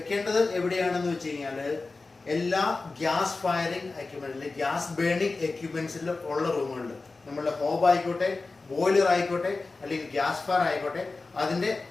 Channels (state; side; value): quieter; right; 3.7 dB